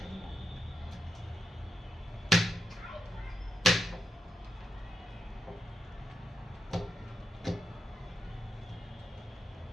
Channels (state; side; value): normal; both; correlation 0.85